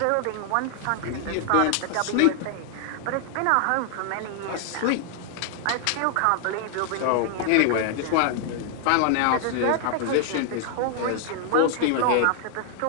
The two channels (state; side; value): different; both; correlation 0.00